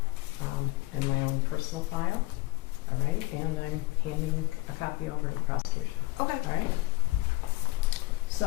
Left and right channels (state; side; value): quieter; right; 20.9 dB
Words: in my own personal file, all right? And I'm handing a copy over to the prosecution, Okay. all right?